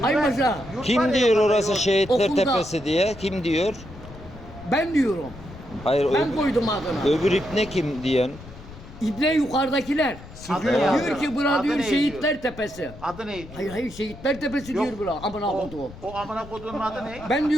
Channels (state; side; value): noise; left; rumble, 16 dB below the sound